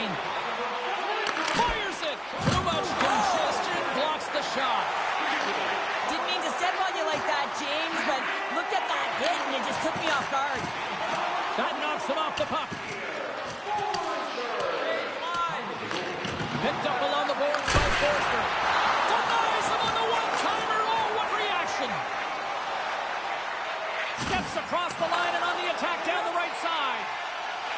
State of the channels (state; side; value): identical; both; correlation 1.00